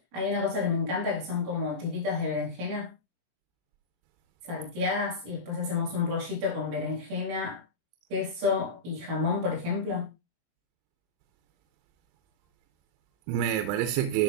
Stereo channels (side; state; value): left; late; 24 ms